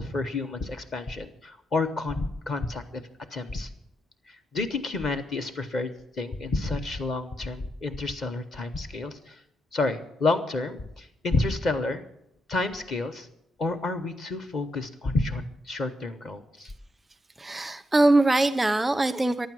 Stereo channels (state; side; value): normal; both; correlation 0.82